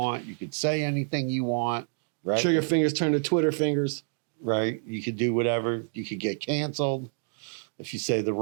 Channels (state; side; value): silent; left; 59 dB below the other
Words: You could say anything you want, right? Trigger fingers turn to Twitter fingers. Right. You could do whatever. You could get canceled if you say the